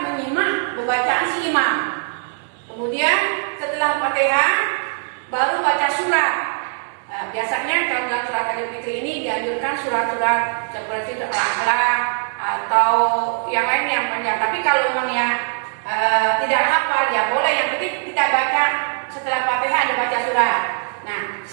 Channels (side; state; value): left; silent; 65 dB below the other